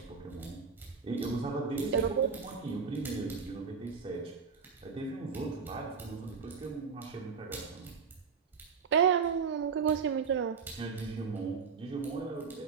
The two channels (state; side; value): quieter; left; 5.8 dB